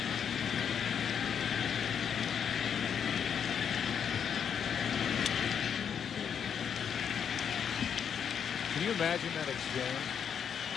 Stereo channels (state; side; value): quieter; right; 7.8 dB